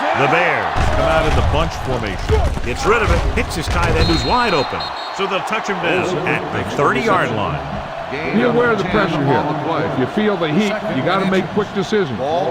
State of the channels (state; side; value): identical; both; correlation 1.00